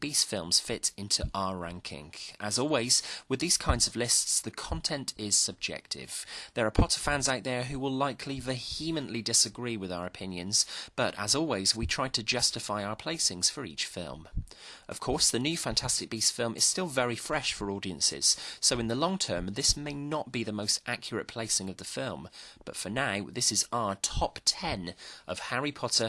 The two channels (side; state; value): both; identical; correlation 1.00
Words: Beasts films fit into our ranking? As always, with these kinds of lists, the content is subjective. There are Potter fans out there who will likely vehemently disagree with our opinions, but as always, we try to justify our placings for each film. Of course, the new Fantastic Beasts film is still very fresh for audiences, so in the long term, this may not be the most accurate placing of the film, but for now, this is our top 10 of Harry